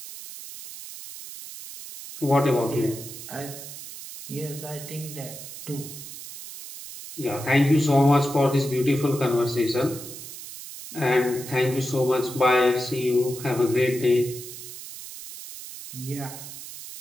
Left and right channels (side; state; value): right; noise; hiss, 12 dB below the sound